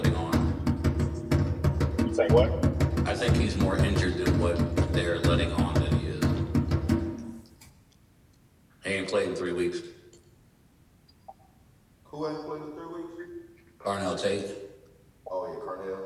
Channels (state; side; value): identical; both; correlation 1.00